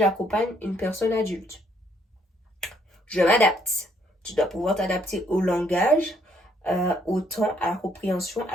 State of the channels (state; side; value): normal; both; correlation 0.68